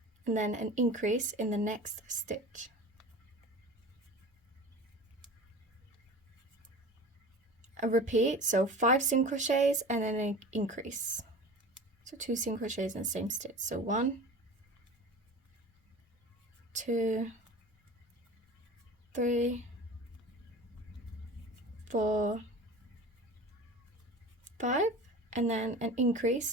and then an increase in the next stitch. A repeat, so 5 single crochets and then an increase. So 2 single crochets in the same stitch. So 1, 2, 3, 4, 5, and then an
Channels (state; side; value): normal; both; correlation 0.36